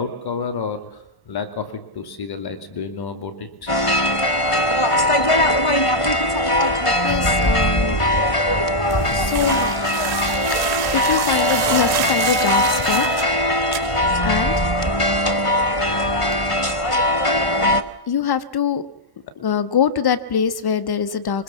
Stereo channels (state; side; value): late; right; 1.1 ms